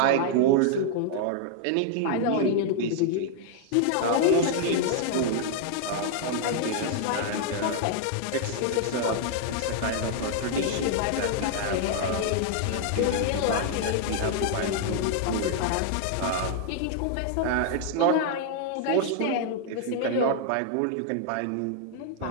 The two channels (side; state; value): both; different; correlation 0.00